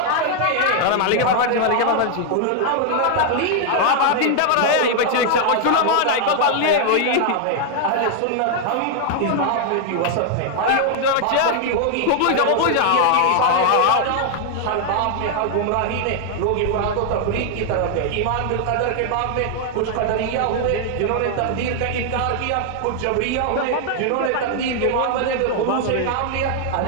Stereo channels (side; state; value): both; different; correlation 0.00